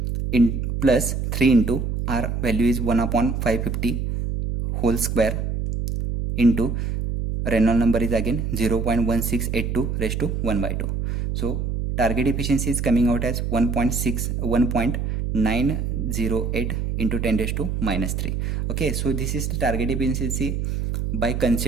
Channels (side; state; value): right; noise; hum, 1 dB below the sound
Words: in plus 3 into R value is 1 upon 550 whole square into Reynolds number is again 0.1682 raised to 1 by 2. So target efficiency is coming out as 1.908 into 10 raised to minus 3. Okay, so this is the target efficiency by